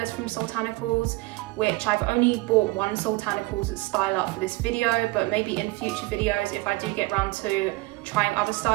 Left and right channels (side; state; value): left; quieter; 21.3 dB